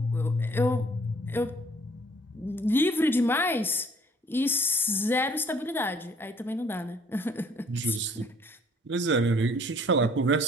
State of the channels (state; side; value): normal; both; correlation 0.59